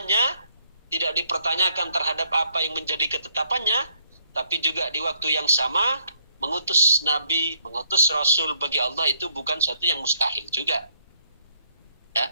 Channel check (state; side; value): inverted; both; correlation -0.68